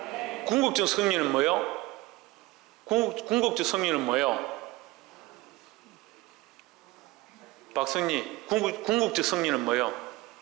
궁극적 승리는 뭐예요? 궁극적 승리는 뭐예요? 박승리, 궁극적 승리는 뭐예요?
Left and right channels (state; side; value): quieter; left; 20.1 dB